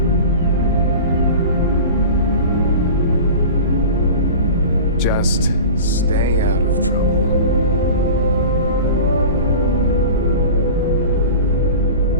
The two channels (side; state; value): both; inverted; correlation -0.35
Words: Just stay out of trouble.